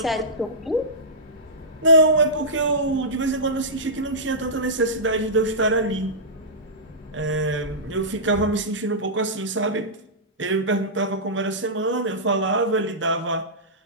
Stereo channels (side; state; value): both; normal; correlation -0.15